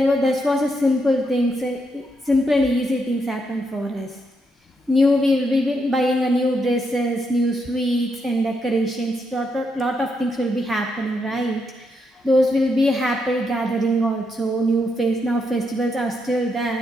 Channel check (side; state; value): both; normal; correlation 0.79